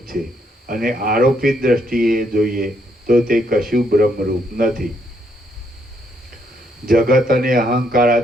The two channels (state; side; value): normal; both; correlation 0.73